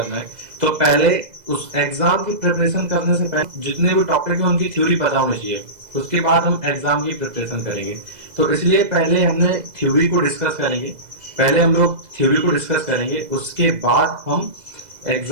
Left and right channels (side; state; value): left; late; 2.0 ms